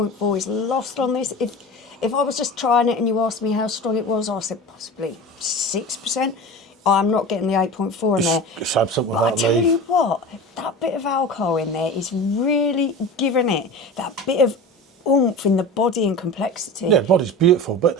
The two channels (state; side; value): normal; both; correlation 0.32